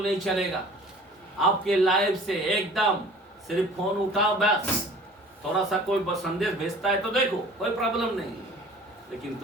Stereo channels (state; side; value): normal; both; correlation 0.47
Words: नहीं चलेगा आपके लाइफ से, एकदम सिर्फ फोन उठाओ बस। थोड़ा सा कोई संदेश भेजता है तो देखो, कोई प्रॉब्लम नहीं, लेकिन